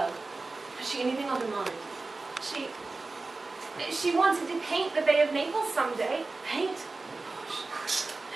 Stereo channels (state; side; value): quieter; left; 3.6 dB